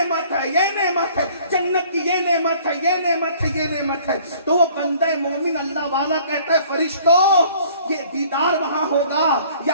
ہے، یہ نعمت ہے، جنت کی یہ نعمت ہے، یہ نعمت ہے، یہ نعمت ہے۔ تو وہ بندہ مومن اللہ والا کہتا ہے فرشتوں یہ دیدار وہاں ہوگا،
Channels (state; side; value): inverted; both; correlation -0.55